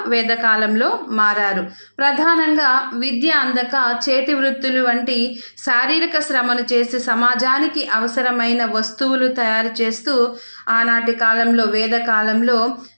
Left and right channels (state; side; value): inverted; both; correlation -1.00